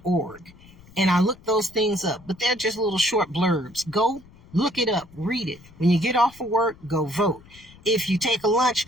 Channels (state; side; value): noise; left; rumble, 24 dB below the sound